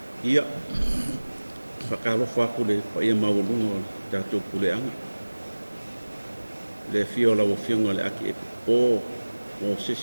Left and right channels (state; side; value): inverted; both; correlation -1.00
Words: ia whakalo whakule pa ia maulunga tatu pule anga le fiola o fionga le aki o